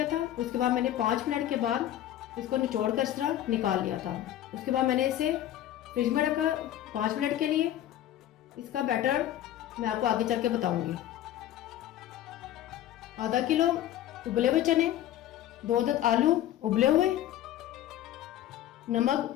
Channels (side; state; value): right; quieter; 12.4 dB